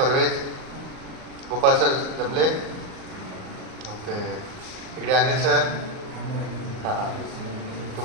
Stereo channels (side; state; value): left; late; 38 ms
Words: गोपाल सर जमले. ओके. इकडे अनिल सर. हां हां.